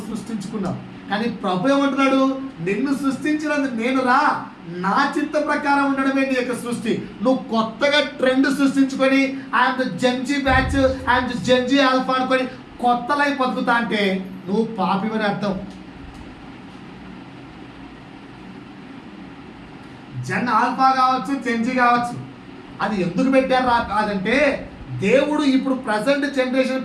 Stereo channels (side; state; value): both; identical; correlation 1.00